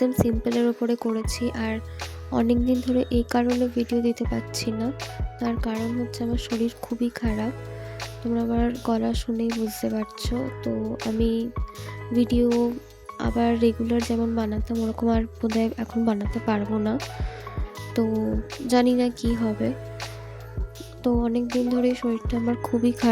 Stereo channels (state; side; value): identical; both; correlation 1.00